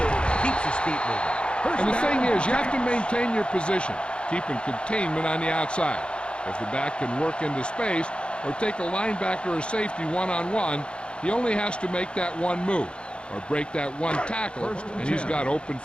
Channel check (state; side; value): late; right; 0.055 ms